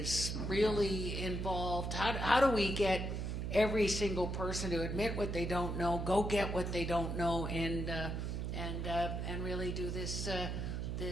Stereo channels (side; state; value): right; noise; hum, 2 dB below the sound